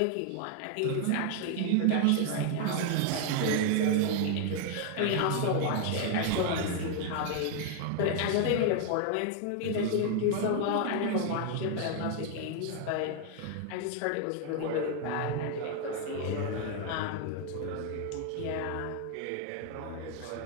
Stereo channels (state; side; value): different; both; correlation 0.00